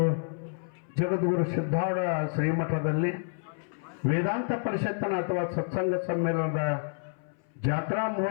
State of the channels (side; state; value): right; silent; 58 dB below the other